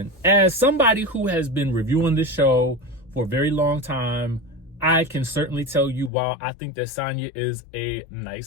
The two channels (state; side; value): drops out; right; at 6.1 s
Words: as somebody who has been reviewing this show for a very long time, I can certainly tell you, while I think that Sanya is a